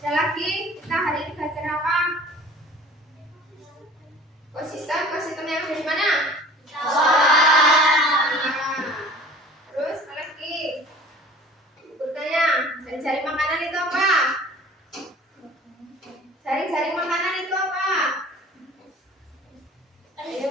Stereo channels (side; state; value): both; normal; correlation 0.45